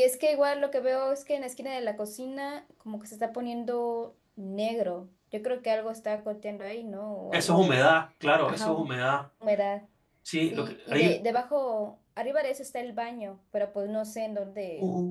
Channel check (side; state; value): both; identical; correlation 1.00